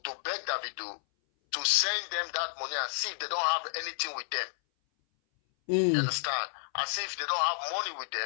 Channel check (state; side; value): silent; right; 57 dB below the other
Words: to beg Davido to send them that money and see if they don't have anything with them. You understand? As if they don't have money with